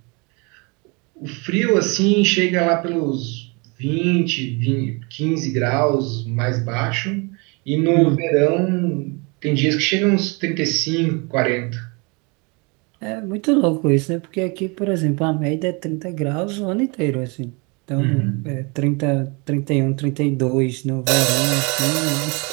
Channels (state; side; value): quieter; left; 30.0 dB